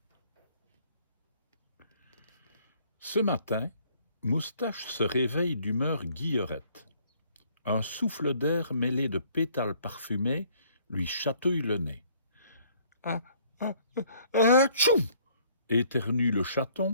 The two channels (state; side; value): inverted; both; correlation -0.61